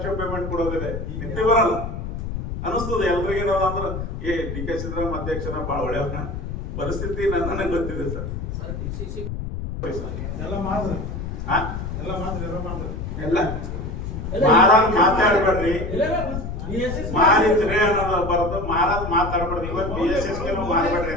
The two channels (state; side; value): noise; left; rumble, 5 dB below the sound